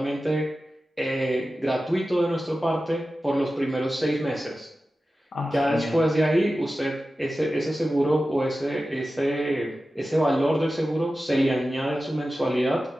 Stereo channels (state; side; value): normal; both; correlation 0.94